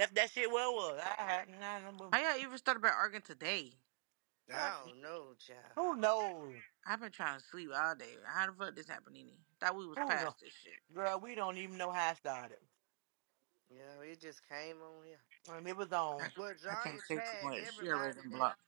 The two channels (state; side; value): silent; left; digital silence